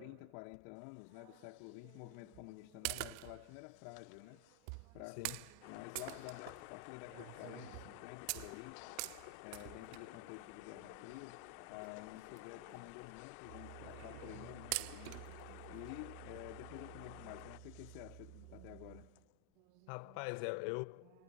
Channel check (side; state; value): both; different; correlation 0.00